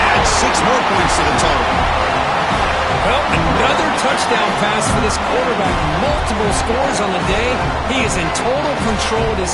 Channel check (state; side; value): identical; both; correlation 1.00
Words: Add 6 more points to the total. Well, another touchdown pass for this quarterback. Multiple scores on the day. He is in total control of this